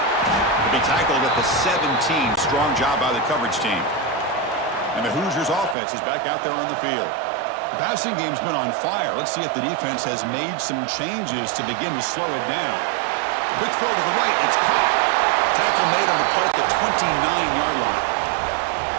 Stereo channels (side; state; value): left; drops out; at 5.8 s